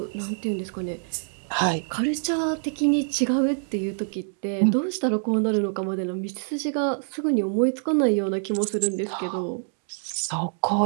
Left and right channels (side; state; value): left; silent; digital silence